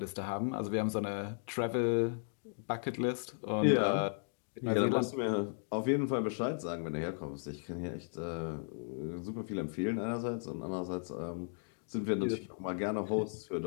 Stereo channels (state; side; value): silent; right; digital silence